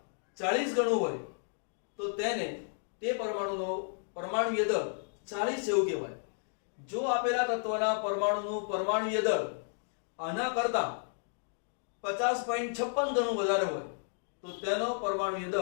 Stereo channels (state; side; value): silent; right; digital silence